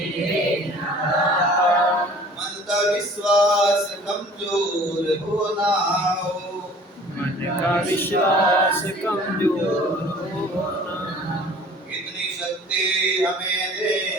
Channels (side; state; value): both; normal; correlation 0.49